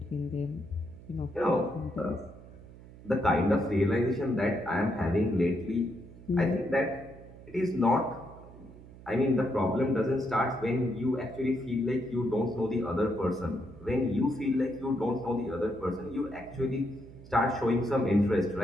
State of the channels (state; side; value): noise; right; hum, 19 dB below the sound